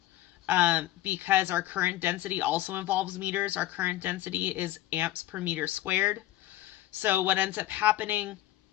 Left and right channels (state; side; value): quieter; right; 14.7 dB